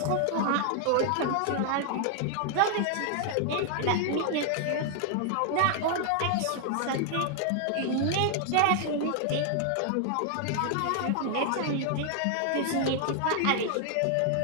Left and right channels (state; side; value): different; both; correlation 0.00